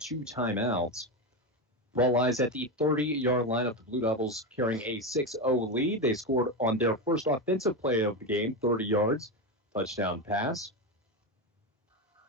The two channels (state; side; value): normal; both; correlation 0.15